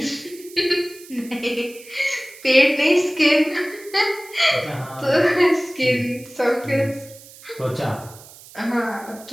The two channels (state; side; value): noise; right; hiss, 20 dB below the sound